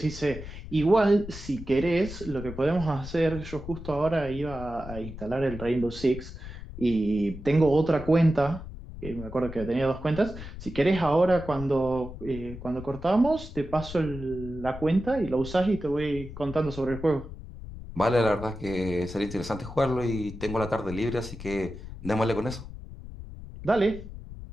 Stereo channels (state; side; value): noise; left; rumble, 12 dB below the sound